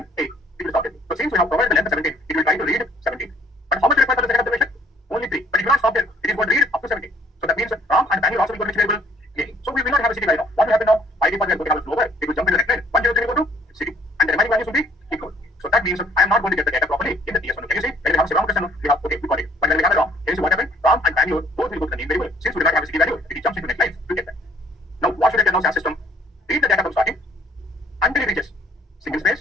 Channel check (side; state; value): both; normal; correlation 0.60